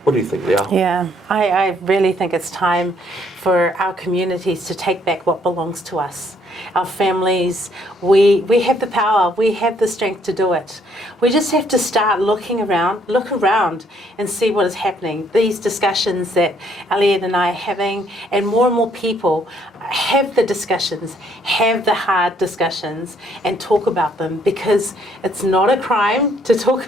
What do you think, Leao? Yeah, I really think it's time for our communities to take back what belongs to us. Our families, we have the power, we have the strength to do it. We just have to start look around and see what is happening. These discussions that Elliot and I are having, and more people have the discussions, have the hard discussions, and talk about them, because it's not a crime to talk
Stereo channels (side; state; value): both; normal; correlation 0.67